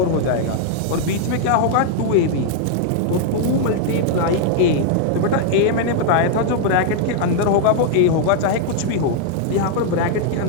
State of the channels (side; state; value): both; different; correlation 0.00